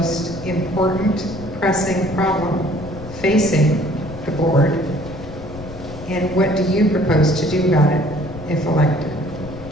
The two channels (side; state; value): left; noise; rumble, 13 dB below the sound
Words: important pressing problem facing the board, and what do you propose to do about it if elected?